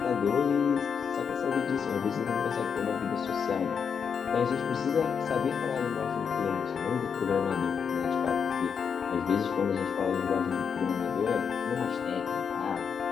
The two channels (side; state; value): right; quieter; 6.7 dB